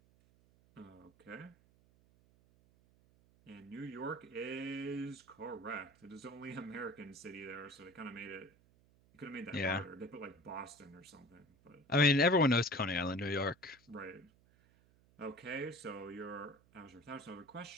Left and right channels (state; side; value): noise; right; hum, 30 dB below the sound